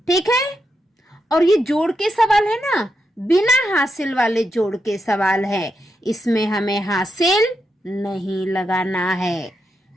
ठीक है। और ये जोड़ के सवाल है ना, बिना हासिल वाले जोड़ के सवाल है। इसमें हमें हासिल नहीं लगाना है,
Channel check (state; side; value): normal; both; correlation 0.84